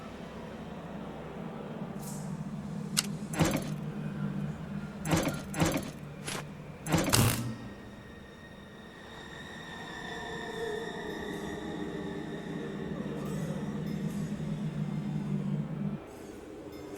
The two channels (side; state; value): both; identical; correlation 1.00